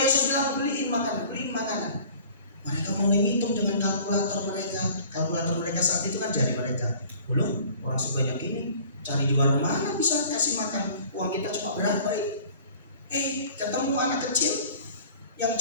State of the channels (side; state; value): both; inverted; correlation -0.47